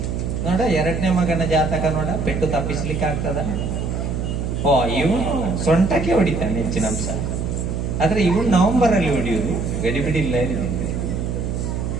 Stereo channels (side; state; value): right; noise; hum, 2 dB below the sound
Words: ನೋಡ, 2ನೇ ಮಗನ ಜಾತಕ ನೋಡ, ಪೆಟ್ಟು ತಪ್ಪಿಸ್ಲಿಕ್ಕೆ ಆಗ್ತದ? ಇವನು ಸೊಂಟಕ್ಕೆ ಹೊಡಿತಾನೆ ಹೆಚ್ಚಿನ ಅಂಶ. ಆದ್ರೆ ಇವನು ನವೆಂಬರ್ ಅಲ್ಲಿ ಹೊಡಿಯುದು, ಗಡಿಬಿಡಿಲ್ಲ.